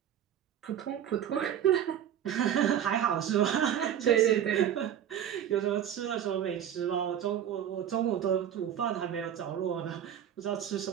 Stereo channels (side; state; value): left; quieter; 9.9 dB